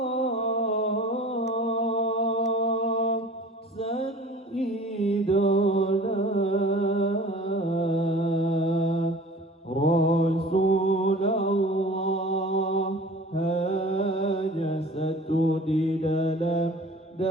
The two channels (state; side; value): normal; both; correlation 0.44